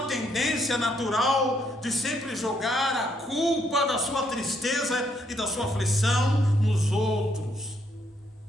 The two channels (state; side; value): normal; both; correlation 0.72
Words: tendência natural de sempre jogar a culpa da sua tristeza e da sua aflição nos outros.